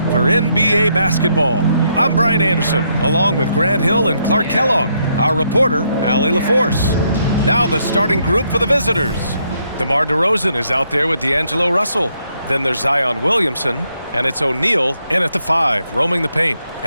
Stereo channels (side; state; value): both; inverted; correlation -0.75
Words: for NBA basketball. I'm Brian Anderson, along with Grant Hill and Clark Kellogg. Our reporter, Allie LaForce. Now the starting group for the visitors. DeMar DeRozan is out there with D'Angelo Russell. Then there's Zion Williamson, and it's O'Neal in at the 5, roaming the paint.